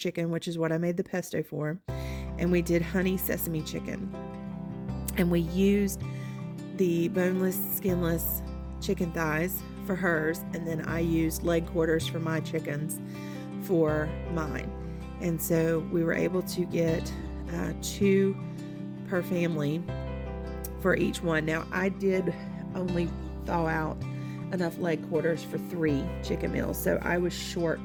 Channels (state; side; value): identical; both; correlation 1.00